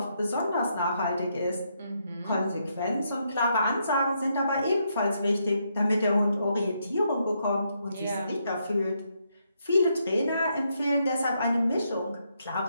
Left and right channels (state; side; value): inverted; both; correlation -0.78